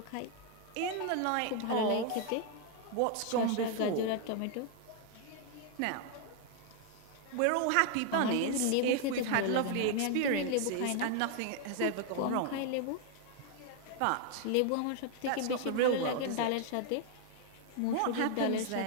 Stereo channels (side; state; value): both; different; correlation 0.00